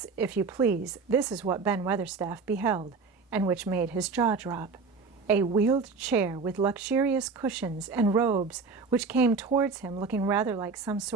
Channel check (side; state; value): left; quieter; 4.6 dB